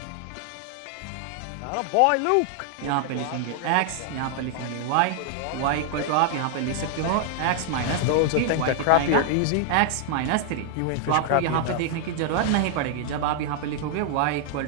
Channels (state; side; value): different; both; correlation 0.00